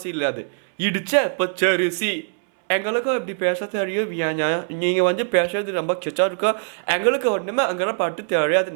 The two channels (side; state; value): left; silent; 64 dB below the other